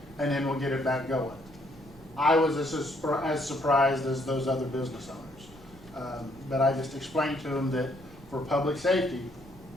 and then we'll get it back going. I was as surprised as those other business owners. But I just explained to them that for public safety,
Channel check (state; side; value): noise; right; rumble, 21 dB below the sound